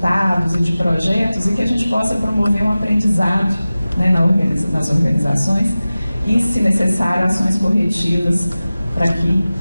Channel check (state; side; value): inverted; both; correlation -0.96